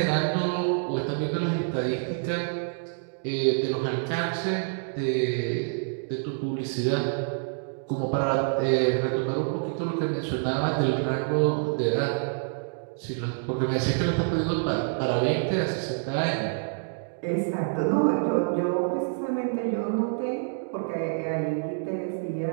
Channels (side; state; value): left; silent; digital silence